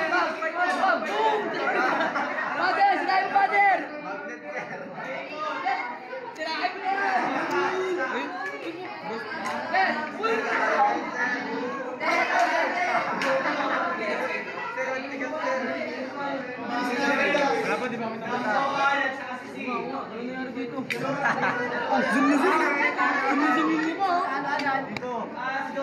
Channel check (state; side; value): identical; both; correlation 1.00